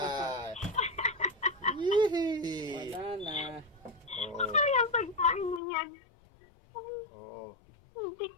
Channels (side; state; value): right; drops out; at 5.6 s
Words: Yee! Wala na. Oo. Ay, ang pagkain mo yan. Oo.